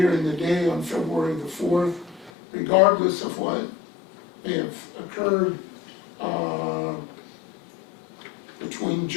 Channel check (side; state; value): right; drops out; at 2.3 s